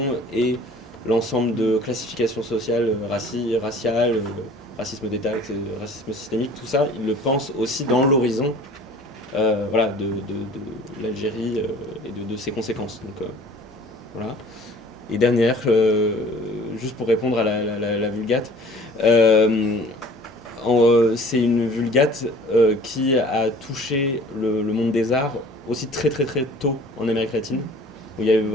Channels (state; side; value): normal; both; correlation 0.49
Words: et l'ensemble de classifications sociales, raciales, racisme d'État, racisme systémique, tout ça, ils le pensent aussi dans l'horizon voilà, de l'Algérie et de ses conséquences. Donc, voilà. Et dernière, juste pour répondre à la Vulgate, c'est une Vulgate qui a touché le monde des arts aussi très très très tôt en Amérique latine, où il y a eu